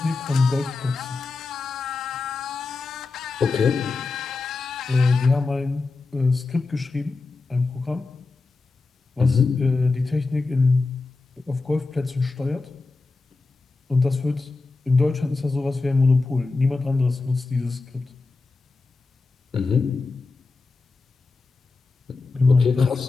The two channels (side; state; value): right; quieter; 3.8 dB